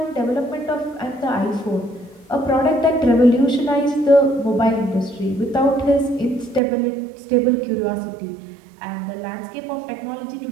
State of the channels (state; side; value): drops out; left; at 6.6 s